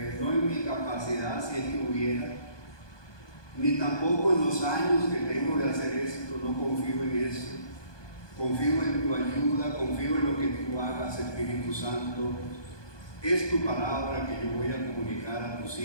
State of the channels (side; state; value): right; late; 1.2 ms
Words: no en mi capacidad si es que hubiera, ni tampoco en los años que tengo de hacer esto. No confío en eso. Confío en tu ayuda, confío en lo que tú hagas, Espíritu Santo. Es tu palabra que yo voy a comunicar a tus